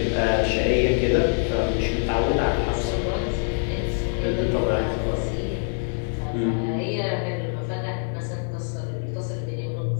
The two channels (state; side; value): silent; right; 57 dB below the other